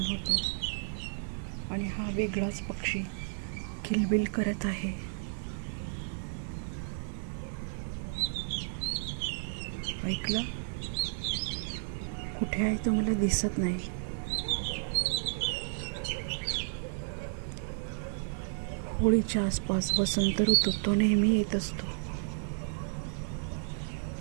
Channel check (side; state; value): left; silent; digital silence